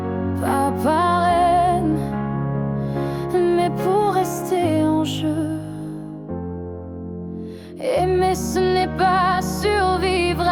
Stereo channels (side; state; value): both; identical; correlation 1.00